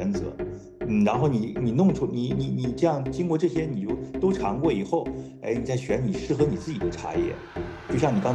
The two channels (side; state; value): both; identical; correlation 1.00